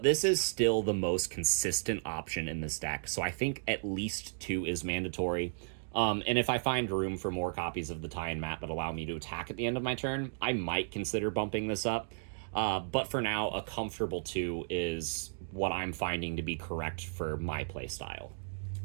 this is still the most consistent option in this deck, so I think at least 2 is mandatory. And if I find room for more copies of the tie-in mat that allow me to attack at the end of my turn, I might consider bumping this up. But for now, a comfortable 2 is what I'm finding to be correct for my playstyle.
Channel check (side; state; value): left; silent; digital silence